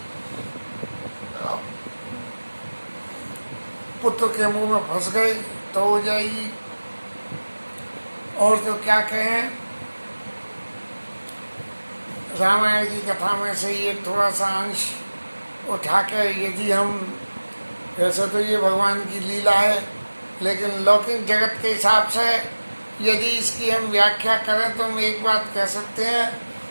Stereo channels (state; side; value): inverted; both; correlation -1.00